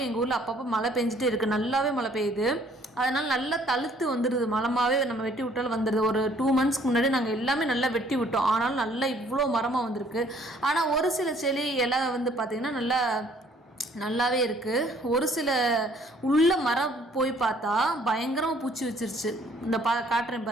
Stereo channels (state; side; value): normal; both; correlation 0.60